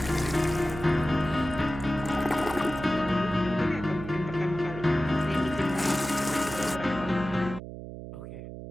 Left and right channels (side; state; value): right; noise; hum, 11 dB below the sound